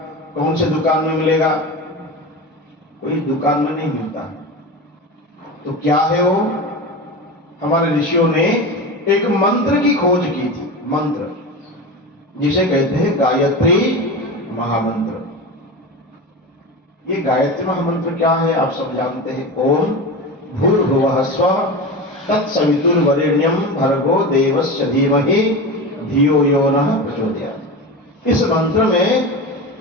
कौन से दुकान में मिलेगा? कोई दुकान में नहीं मिलता। तो क्या है वो? हमारे ऋषियों ने एक मंत्र की खोज की थी, मंत्र जिसे कहते हैं गायत्री महामंत्र। ये गायत्री महामंत्र क्या है आप सब जानते हैं। ओम भूर्भुवः स्वः तत्सवितुर्वरेण्यं भर्गो देवस्य धीमहि धियो यो नः प्रचोदयात्। इस मंत्र में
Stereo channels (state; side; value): normal; both; correlation 0.26